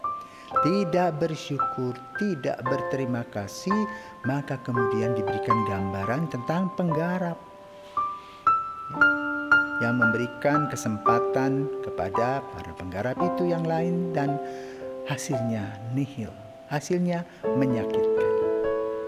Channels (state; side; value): identical; both; correlation 1.00